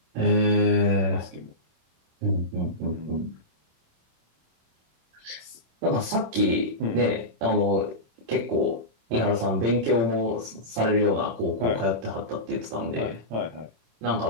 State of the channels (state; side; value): late; left; 26 ms